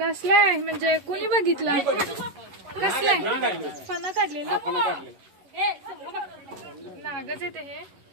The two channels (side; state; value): left; late; 11 ms